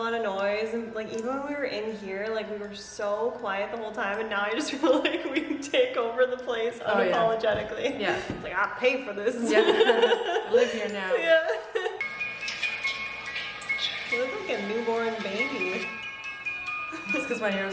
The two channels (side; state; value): both; identical; correlation 1.00